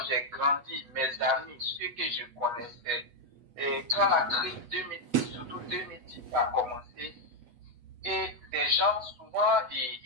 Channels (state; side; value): late; left; 8.2 ms